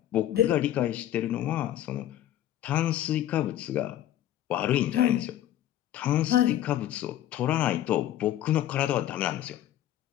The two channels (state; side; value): quieter; right; 12.4 dB